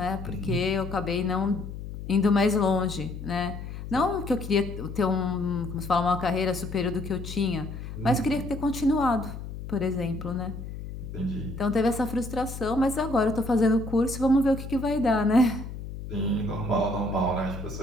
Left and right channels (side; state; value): left; noise; hum, 9 dB below the sound